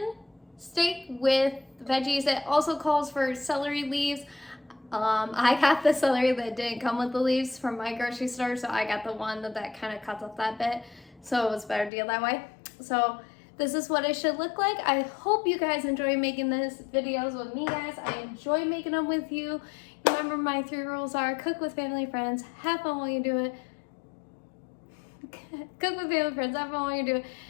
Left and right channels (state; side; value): drops out; right; at 11.9 s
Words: steak with veggies. It also calls for celery leaves. I got the celery that didn't come with the leaves from my grocery store, so I got the one that kind of cuts off that bit, so it was a better deal that way. So this is what it should look like. I hope you guys enjoy making these videos with me, guys. I enjoy making them with you. Remember, my 3 rules are: cook with family, friends, have fun while you do it. Cook with family, friends, have fun while you do it,